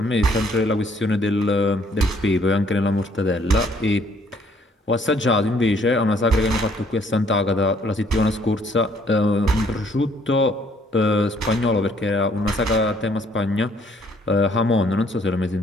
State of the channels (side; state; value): both; normal; correlation 0.63